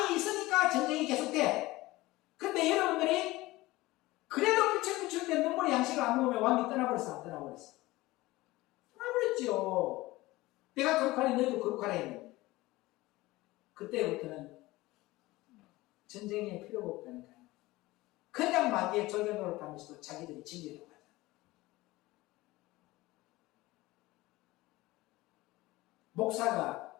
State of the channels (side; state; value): right; quieter; 19.3 dB